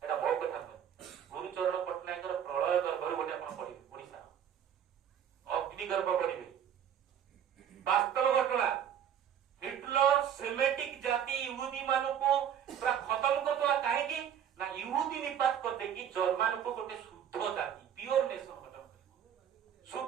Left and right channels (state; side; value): quieter; left; 9.2 dB